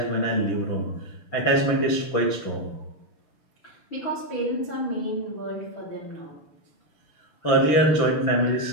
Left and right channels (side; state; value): right; late; 6.6 ms